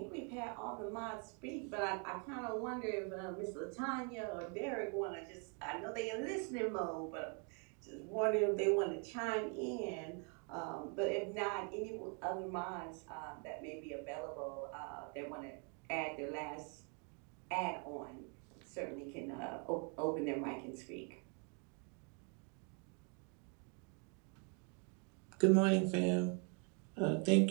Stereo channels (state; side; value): quieter; left; 38.2 dB